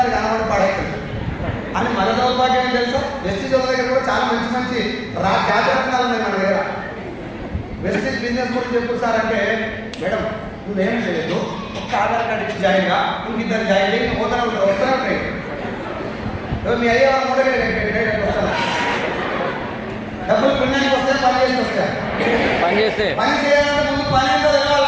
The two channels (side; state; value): both; identical; correlation 1.00